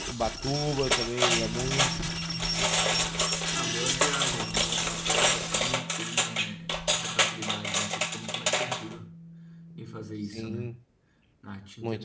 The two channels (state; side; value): identical; both; correlation 1.00